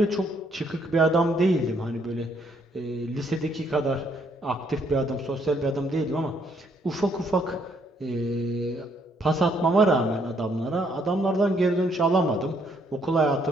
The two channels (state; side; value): normal; both; correlation 0.69